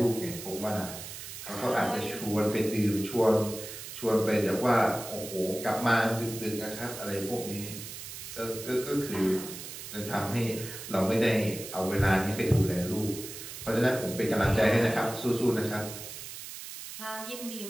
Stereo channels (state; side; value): noise; right; hiss, 10 dB below the sound